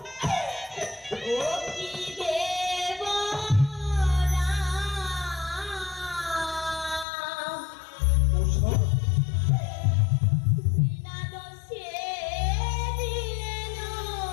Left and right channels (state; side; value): drops out; right; at 7.1 s